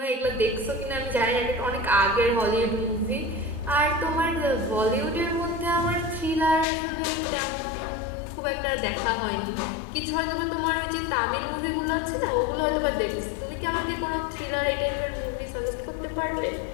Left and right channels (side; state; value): right; drops out; at 6.7 s